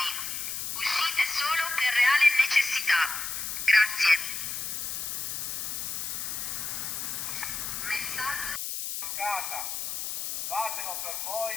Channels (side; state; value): left; noise; hiss, 4 dB below the sound